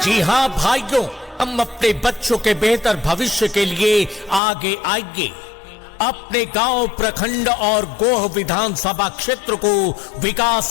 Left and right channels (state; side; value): drops out; right; at 4.4 s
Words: जी हाँ भाइयों, हम अपने बच्चों के बेहतर भविष्य के लिए आगे आएंगे। अपने गांव, प्रखंड और गोह विधानसभा क्षेत्र को